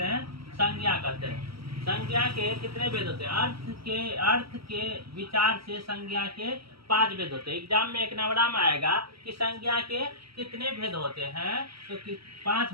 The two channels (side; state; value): left; late; 0.75 ms